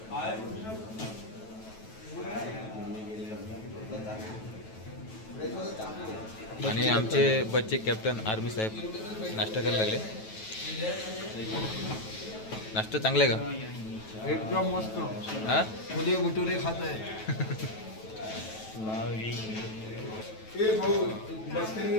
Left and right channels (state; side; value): late; right; 9.2 ms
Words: आणि आमचे बच्चे कॅप्टन आर्मी साहेब नाश्ता करायला लागले. नाश्ता चांगला आहे का? एकदम मस्त. हा छोले भटुरे खात आहे. भाऊ बसते